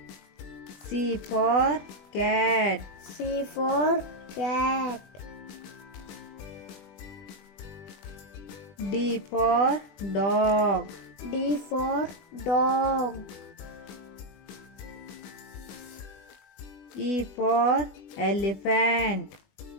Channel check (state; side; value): late; right; 20 ms